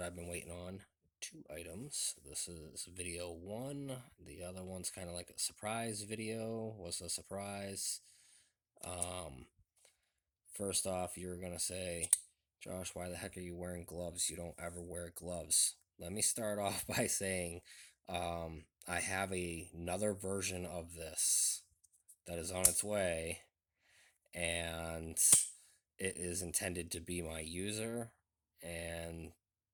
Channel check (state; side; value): identical; both; correlation 1.00